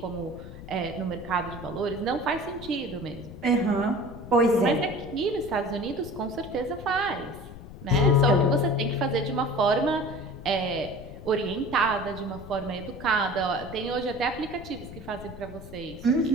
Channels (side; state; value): left; noise; rumble, 14 dB below the sound